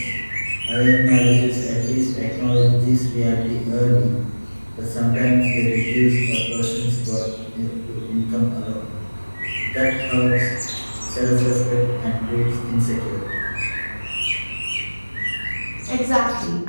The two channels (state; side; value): inverted; both; correlation -1.00